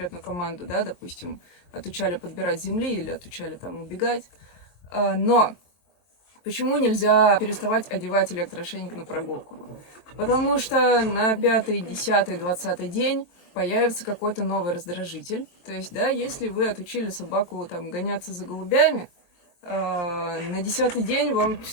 команду, да, допустим, отучали подбирать земли или отучали там убегать. Но почему нельзя переставать одевать электроошейник на прогулку? Потому что на 5-й, 10-й, 20-й день появится какой-то новый раздражитель. То есть, да, если вы отучили собаку там гоняться за голубями, на 10-й день вам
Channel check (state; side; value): late; right; 23 ms